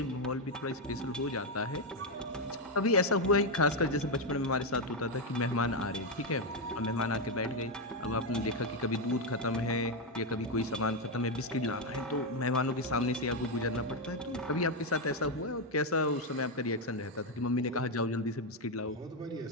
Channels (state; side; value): normal; both; correlation 0.04